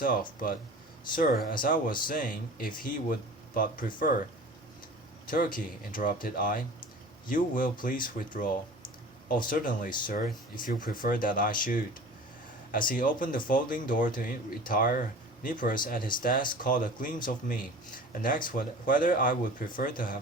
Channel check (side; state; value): both; normal; correlation 0.40